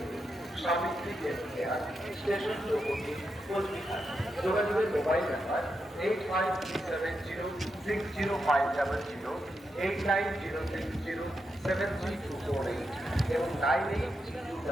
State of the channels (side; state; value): both; normal; correlation 0.85